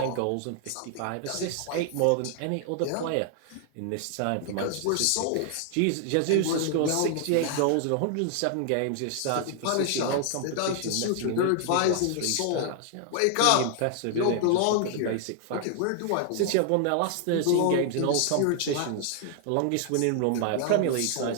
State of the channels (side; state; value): both; different; correlation 0.00